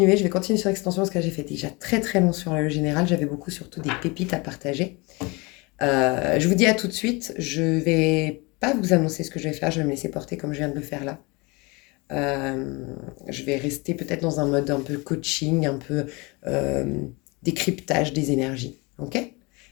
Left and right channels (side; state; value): right; quieter; 26.5 dB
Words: Je vais continuer sur l'extension parce que j'ai fait déjà très très long sur le général. J'avais beaucoup surtout des pépites à partager. Je vous dis à tout de suite. Je vais pas vous annoncer ce que je vais faire. Je vais me laisser porter comme je viens de le faire là. Euh, je vais rester peut-être dans un mode un peu coaching, un peu euh, décryptage des énergies. Ok?